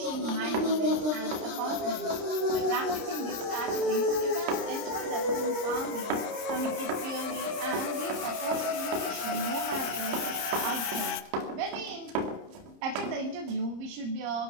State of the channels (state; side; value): late; left; 30 ms